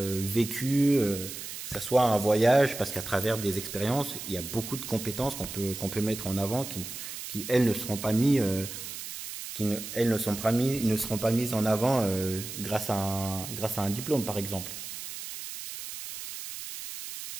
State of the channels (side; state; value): right; noise; hiss, 9 dB below the sound